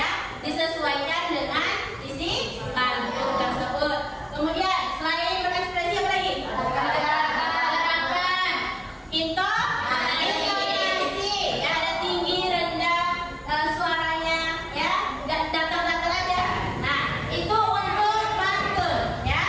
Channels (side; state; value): both; identical; correlation 1.00